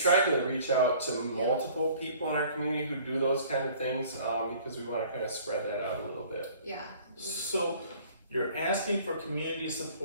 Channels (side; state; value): both; inverted; correlation -0.52